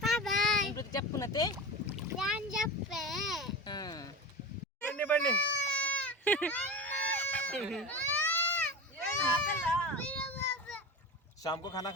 ఇప్పుడు చెప్పునతే ನಾನು చెప్పే ಬನ್ನಿ शाम को खाना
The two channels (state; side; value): normal; both; correlation 0.27